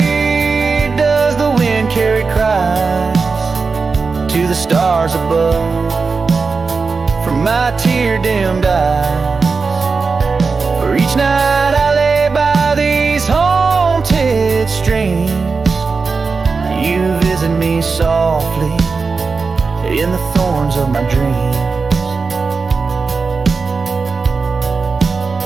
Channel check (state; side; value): quieter; left; 4.6 dB